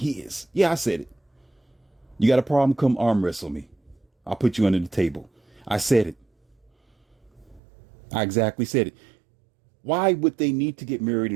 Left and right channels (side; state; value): left; drops out; at 7.6 s